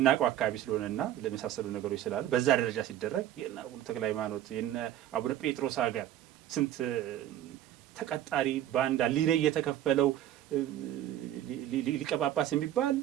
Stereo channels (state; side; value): quieter; left; 12.1 dB